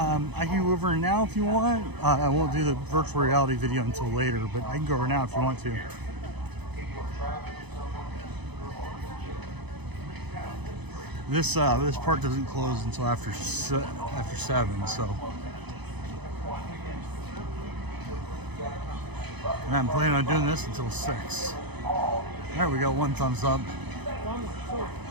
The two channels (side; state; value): left; late; 0.99 ms